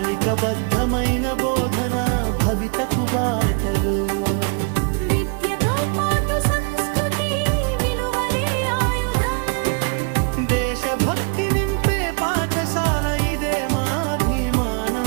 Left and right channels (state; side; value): quieter; left; 36.0 dB